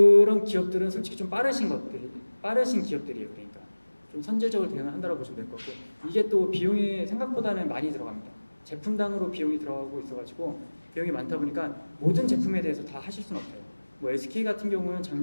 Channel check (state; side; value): inverted; both; correlation -1.00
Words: 기업들은 솔직히 좀 빠르신 기업들이에요. 그러니까 좀 선제적으로 대응을 한다고 보시면 될 것 같고 이게 또 비용이 생각보다는 많이 들어갑니다. 제품당으로 비용이 들어가고 있어가지고 비용이 많다 보니까 모든 제품에 대해서 다 하실 수는 없어요. 뭐 SK 같은 경우는